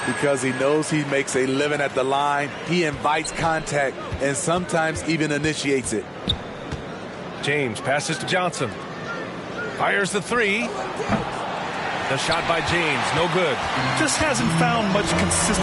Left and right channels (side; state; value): both; identical; correlation 1.00